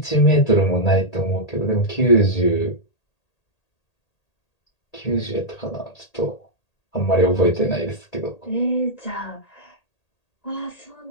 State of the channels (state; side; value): late; right; 1.8 ms